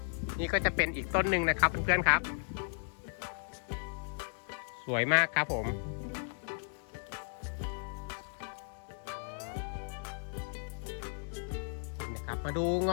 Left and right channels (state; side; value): silent; right; digital silence